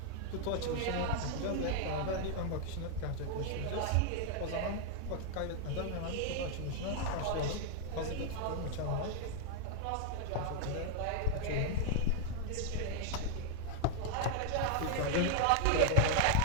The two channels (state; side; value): different; both; correlation 0.00